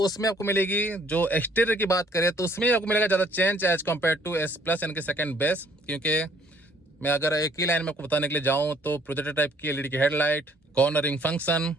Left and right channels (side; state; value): both; normal; correlation 0.61